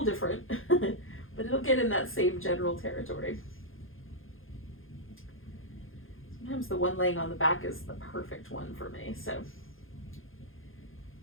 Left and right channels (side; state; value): right; late; 0.60 ms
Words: different, but it'll get in that same general territory. Sometimes the one laying on the back is the perfect one for me, so